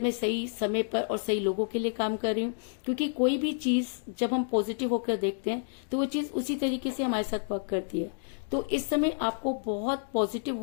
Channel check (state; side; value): silent; right; digital silence